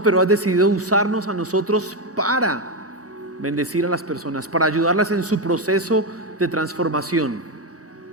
pero has decidido usarnos a nosotros para bendecir a las personas, para ayudarlas en su proceso de transformación.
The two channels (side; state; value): both; normal; correlation 0.08